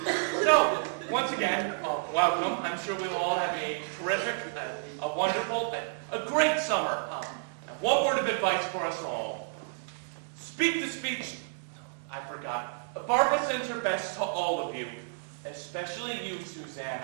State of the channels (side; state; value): left; silent; 57 dB below the other